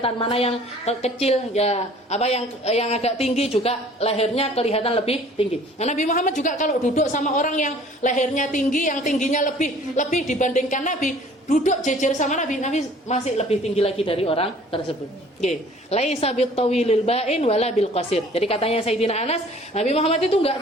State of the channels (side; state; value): both; normal; correlation 0.52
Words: mana yang kecil ya, yang agak tinggi juga lehernya kelihatan lebih tinggi. Nah, Nabi Muhammad juga kalau duduk sama orang yang lehernya tinggi, yang tingginya lebih dibandingkan Nabi, duduk jejer sama Nabi masih lebih tinggi lagi dari orang tersebut. Laisa bitawilil ba'in wala bil qasir. Jadi katanya Sayyidina Anas, Nabi Muhammad itu enggak